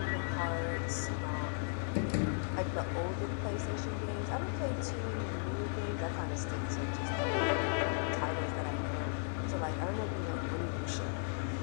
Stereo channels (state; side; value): silent; right; 54 dB below the other